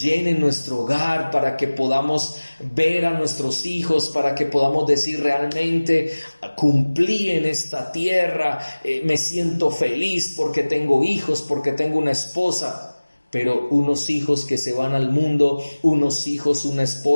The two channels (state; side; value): inverted; both; correlation -1.00